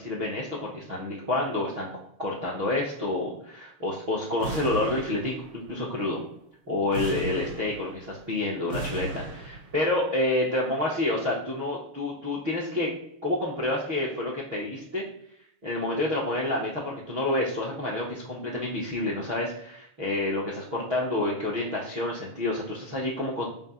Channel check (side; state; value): left; late; 7.0 ms